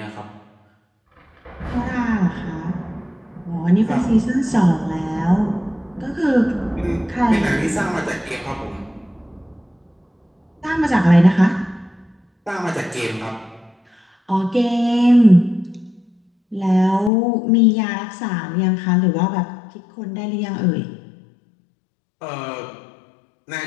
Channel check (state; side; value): drops out; right; at 17.1 s